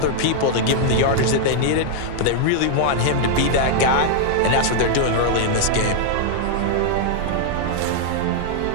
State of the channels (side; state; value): both; different; correlation -0.01